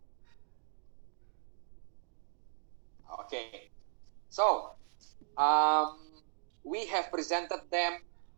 Okay. So, we have presented them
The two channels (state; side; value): silent; left; digital silence